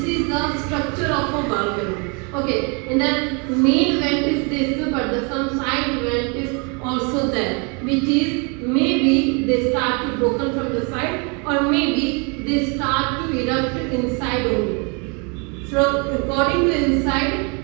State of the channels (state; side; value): quieter; left; 33.8 dB